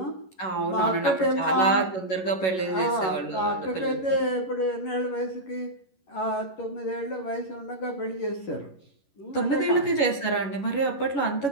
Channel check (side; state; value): right; late; 11 ms